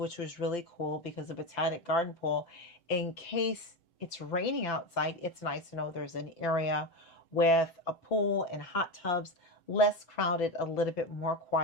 was really cool because the Botanic Garden pool, in case it's raining outside, it's nice to know there's an area with a pool and hot tubs, less crowded, a little bit more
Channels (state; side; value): late; right; 7.9 ms